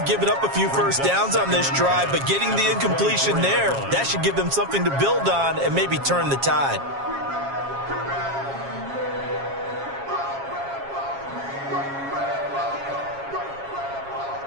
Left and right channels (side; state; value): left; late; 7.3 ms